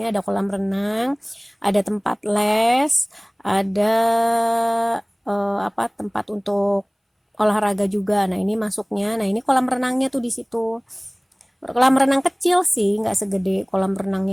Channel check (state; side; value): identical; both; correlation 1.00